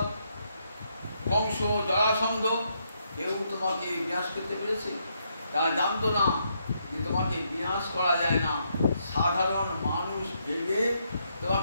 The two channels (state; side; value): inverted; both; correlation -0.77